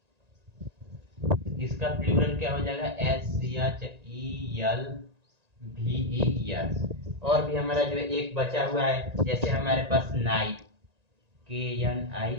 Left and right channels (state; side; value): late; left; 1.9 ms